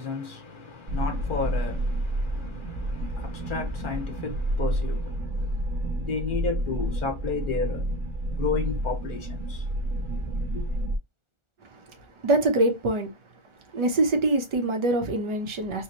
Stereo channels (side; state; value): left; late; 1.4 ms